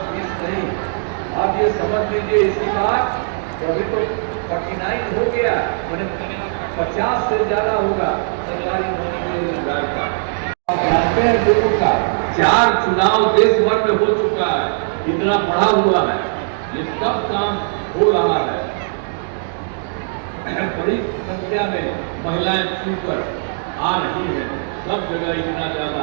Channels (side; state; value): left; silent; digital silence